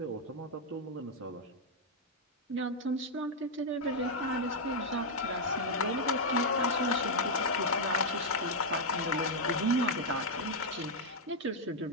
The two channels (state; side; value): normal; both; correlation -0.01